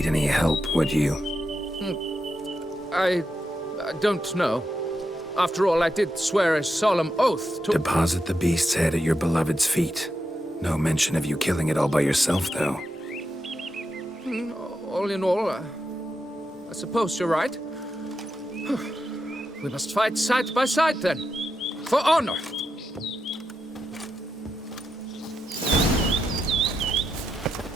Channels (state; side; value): normal; both; correlation 0.86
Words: any help, would you? I don't know. After all, I did swear a solemn oath to— Deposit the beast's head at your beloved's feet. No mention of you killing it all by yourself, though. All in all, I suppose you're right. We must fight side by side, then. For honor.